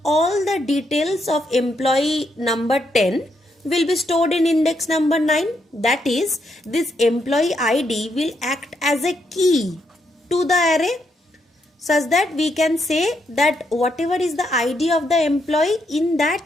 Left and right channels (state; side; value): normal; both; correlation 0.78